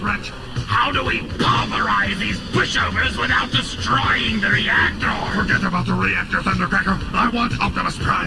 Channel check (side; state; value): both; identical; correlation 1.00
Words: How do we pulverize these pushovers without destroying the reactor? Forget about the reactor, Thundercracker. I want Optimus